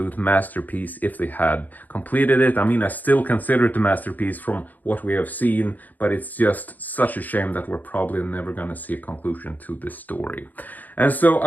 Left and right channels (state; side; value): late; right; 0.083 ms